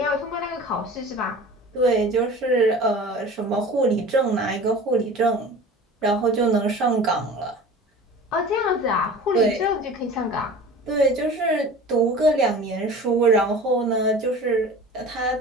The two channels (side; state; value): both; normal; correlation 0.39